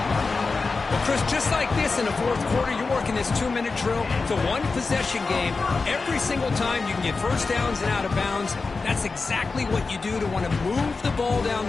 Well, Chris, just like this in the fourth quarter, you're working this 2-minute drill. It's a one-possession game. Every single time you can get first downs and out of bounds. That's exactly what you do to want to move the ball down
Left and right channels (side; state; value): right; quieter; 4.1 dB